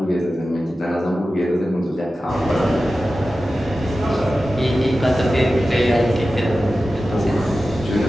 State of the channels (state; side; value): normal; both; correlation 0.94